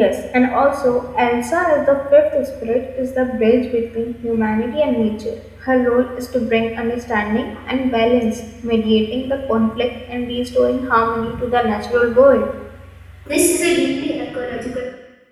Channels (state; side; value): identical; both; correlation 1.00